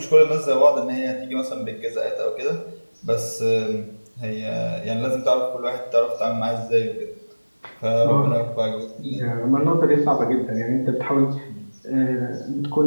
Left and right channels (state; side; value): inverted; both; correlation -1.00